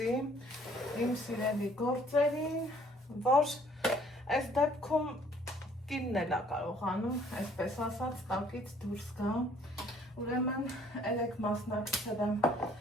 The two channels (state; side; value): normal; both; correlation 0.60